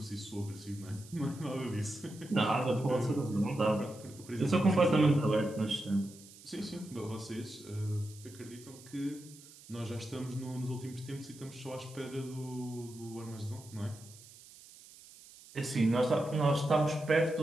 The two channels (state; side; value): noise; right; hiss, 20 dB below the sound